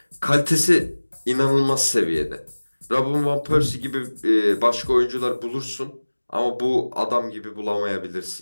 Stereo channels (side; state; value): both; inverted; correlation -1.00